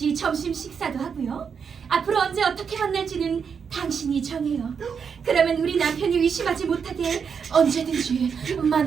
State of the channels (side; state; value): left; quieter; 6.5 dB